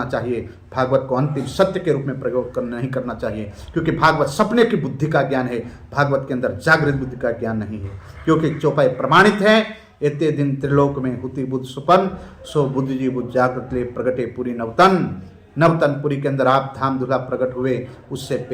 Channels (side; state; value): both; identical; correlation 1.00